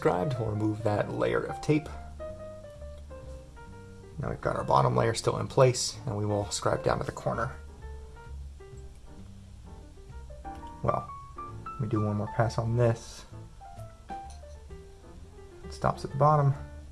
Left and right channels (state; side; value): identical; both; correlation 1.00